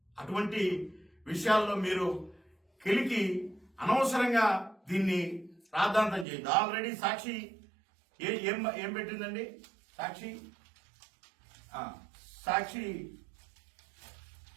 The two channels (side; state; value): left; drops out; at 6.2 s